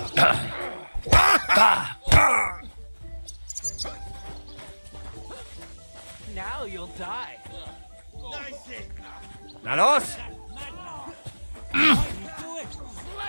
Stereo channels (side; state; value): both; inverted; correlation -1.00